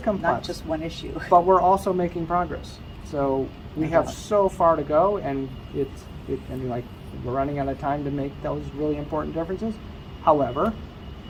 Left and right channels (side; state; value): both; identical; correlation 1.00